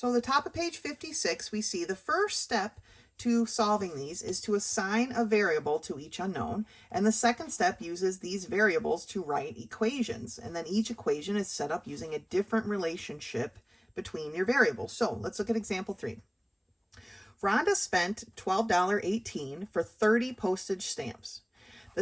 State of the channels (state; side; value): identical; both; correlation 1.00